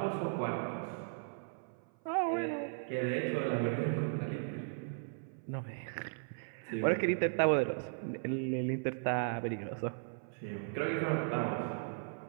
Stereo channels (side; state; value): left; silent; 53 dB below the other